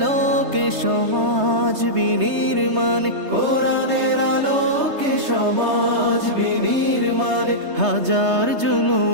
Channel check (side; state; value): left; late; 3.3 ms